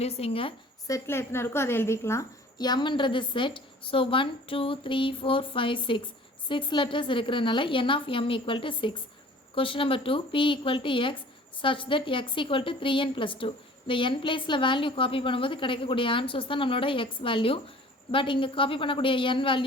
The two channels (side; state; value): both; normal; correlation 0.48